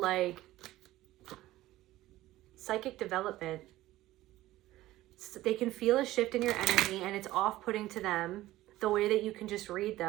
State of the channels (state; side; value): quieter; left; 16.1 dB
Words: like psychic development. So they can feel a shift in your energy and it's off-putting to them. The way that you can just read